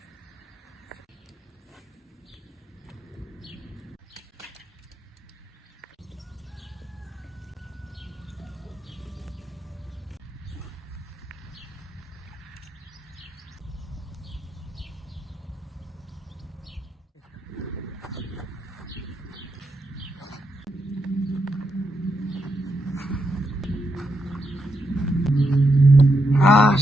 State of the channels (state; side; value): normal; both; correlation 0.82